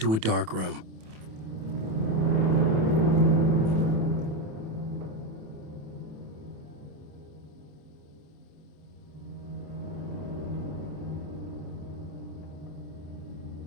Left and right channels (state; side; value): late; left; 27 ms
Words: a dark room.